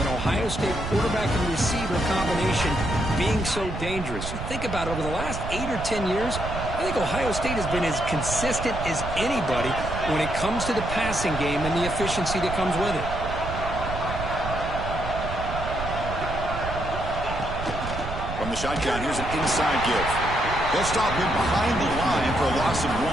Ohio State quarterback and receiver combination being so dangerous. You think about it, over the last 8 or 10 years, I think Ohio State has been as consistent as anybody when it comes to the passing game and the efficiency that comes with it. From the shotgun, here's an inside give. They'll stop him behind the line for a loss of 1.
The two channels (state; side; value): noise; right; rumble, 7 dB below the sound